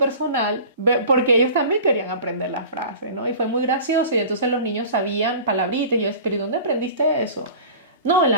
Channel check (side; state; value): both; inverted; correlation -0.40